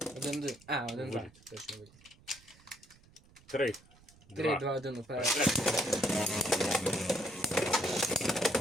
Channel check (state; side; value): noise; right; rumble, 26 dB below the sound